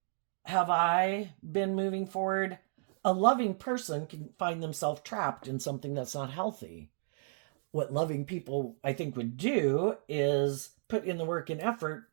Have I been moving forward? A loving person can find themselves trapped in something that's not healthy. What loving people, I think, would do is put in the work and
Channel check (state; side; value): silent; left; digital silence